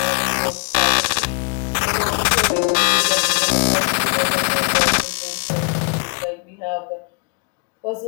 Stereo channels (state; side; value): quieter; right; 35.4 dB